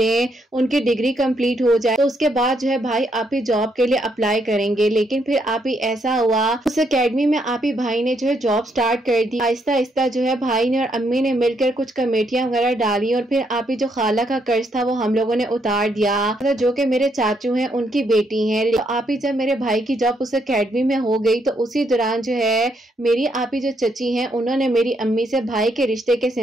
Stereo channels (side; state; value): both; normal; correlation 0.75